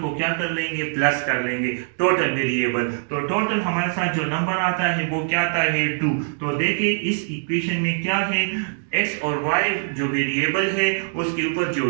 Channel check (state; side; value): silent; left; digital silence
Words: को क्या कर लेंगे? प्लस कर लेंगे, टोटल वेरिएबल। तो टोटल हमारे साथ जो नंबर आता है वो क्या आता है? 2। तो देखिए इस इक्वेशन में क्या है? x और y जो वेरिएबल है उसके ऊपर जो